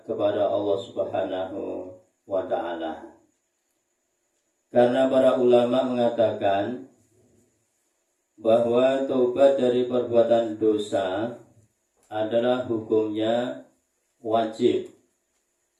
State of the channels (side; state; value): both; identical; correlation 1.00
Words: kepada Allah Subhanahu wa taala. Karena para ulama mengatakan bahwa taubat dari perbuatan dosa adalah hukumnya wajib.